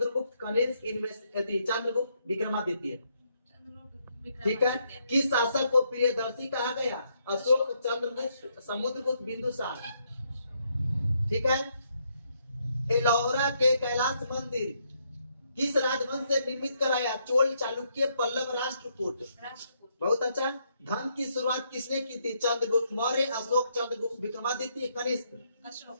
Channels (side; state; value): both; inverted; correlation -0.75